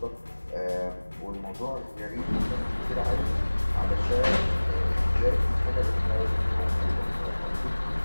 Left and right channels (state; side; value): inverted; both; correlation -1.00